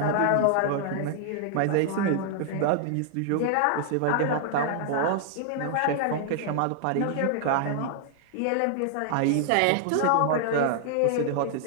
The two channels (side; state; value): both; different; correlation 0.00